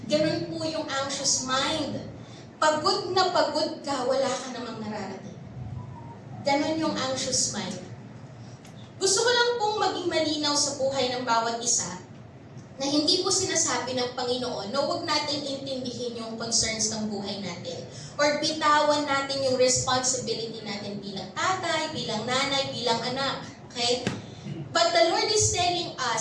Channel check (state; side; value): identical; both; correlation 1.00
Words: Ganun po yung anxious mind. Pagod na pagod ka, wala ka namang nararating. Ganon yung anxious mind. Gusto ko lang pong maging malinaw sa buhay ng bawat isa na hindi po sinasabi ng Panginoon na huwag natin intindihin yung concerns ng buhay natin or bitawan natin yung responsibility natin bilang tatay, bilang nanay, bilang anak. Okay? But the Lord is telling